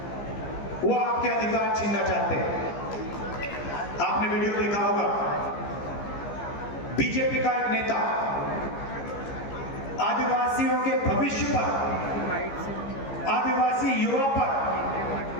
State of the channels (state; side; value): late; right; 15 ms